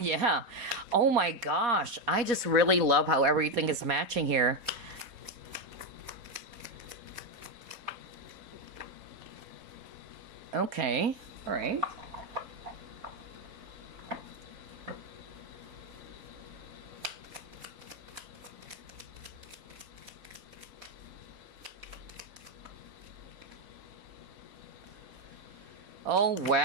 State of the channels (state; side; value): late; left; 3.9 ms